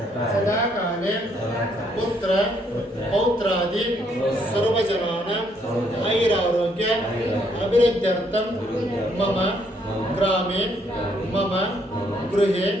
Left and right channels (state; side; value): normal; both; correlation 0.70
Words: सदाकाले पुत्र पौत्रादि सर्वजनानां आयुरारोग्य अभिवृद्ध्यर्थं मम ग्रामे मम गृहे